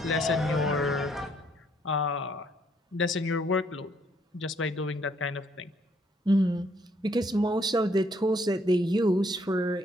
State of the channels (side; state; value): both; normal; correlation 0.68